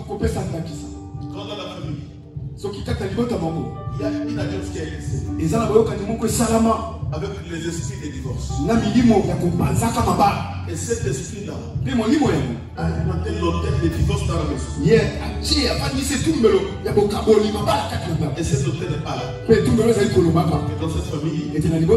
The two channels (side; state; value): both; identical; correlation 1.00